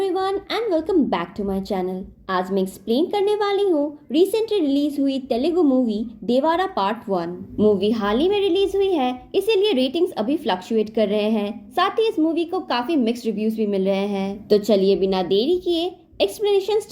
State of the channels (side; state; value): both; identical; correlation 1.00